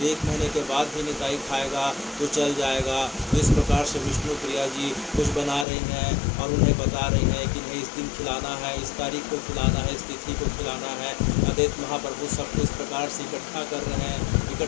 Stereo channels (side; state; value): right; drops out; at 5.7 s